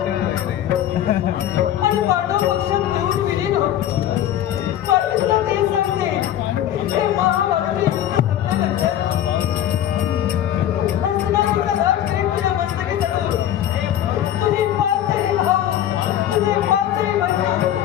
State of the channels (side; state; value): right; quieter; 11.5 dB